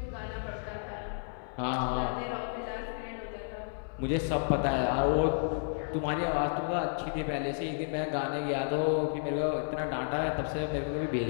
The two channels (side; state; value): right; silent; digital silence